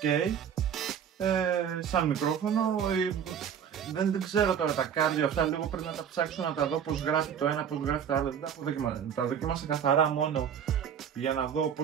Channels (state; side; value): quieter; left; 8.2 dB